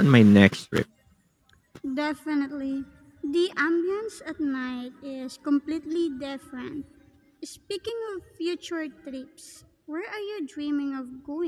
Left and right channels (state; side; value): identical; both; correlation 1.00